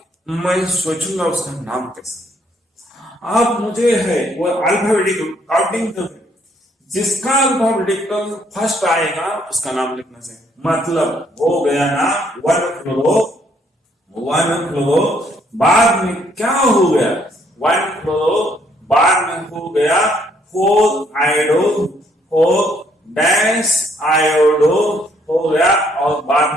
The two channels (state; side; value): normal; both; correlation 0.68